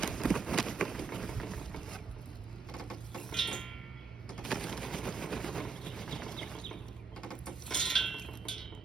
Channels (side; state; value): left; quieter; 5.1 dB